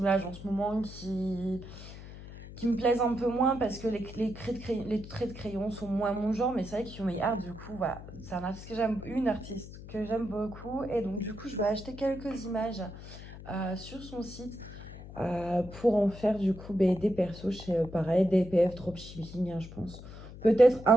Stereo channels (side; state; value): left; noise; hum, 14 dB below the sound